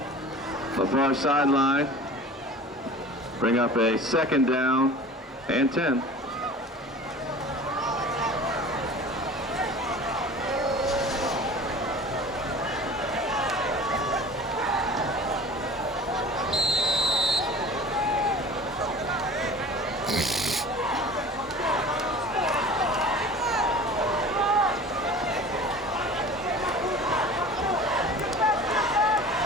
The far sideline. Bring up a second down and 10.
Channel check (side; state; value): both; normal; correlation 0.41